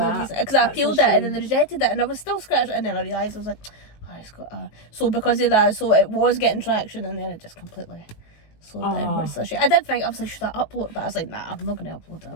Because I appealed it and then they rejected it, and I was still scratching, and then I realised I was like, oh, it's got a... So because of that, so it was getting traction, and then it just completely slowed down. I did think, I was like, should I upload it? But I was like, nah, I'm not going to upload it.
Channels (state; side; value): late; right; 19 ms